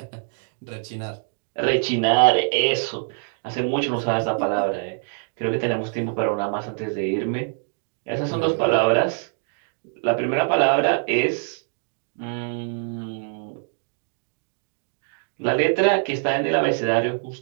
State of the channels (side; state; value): left; silent; 62 dB below the other